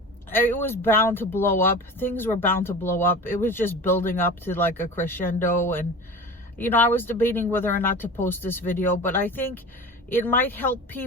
it was bound to blow up. Things were bound to blow up. It was just building up to like a crescendo, and you know, I was debating whether or not to post this video, but I think it might help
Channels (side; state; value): both; normal; correlation 0.34